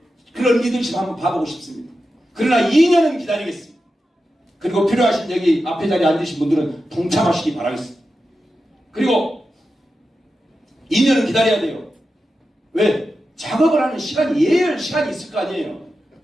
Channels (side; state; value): both; normal; correlation 0.91